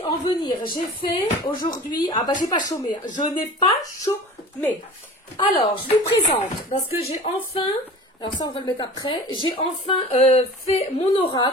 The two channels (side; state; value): both; normal; correlation 0.39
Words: en venir, j'ai fait aujourd'hui, j'ai pas chômé, je n'ai pas chômé. Alors, je vous présente, parce que j'ai enfin, alors ça on va le mettre après, j'ai enfin fait mon